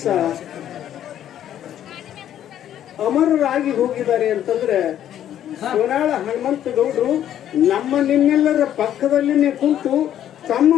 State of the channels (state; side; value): quieter; right; 10.9 dB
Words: ಅಮರರಾಗಿ ಹೋಗಿದ್ದಾರೆ ಅಂತಂದ್ರೆ ಸೋನಾಳ ಹನುಮಂತಗೌಡರು ನಮ್ಮ ನಿಮ್ಮೆಲ್ಲರ ಪಕ್ಕದಲ್ಲಿನೇ ಕುಂತು ತಮ್ಮ